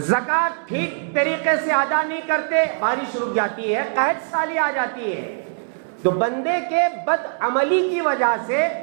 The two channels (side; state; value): left; silent; 64 dB below the other